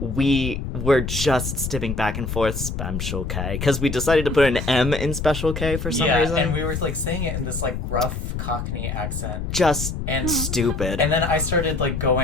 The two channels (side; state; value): left; noise; rumble, 4 dB below the sound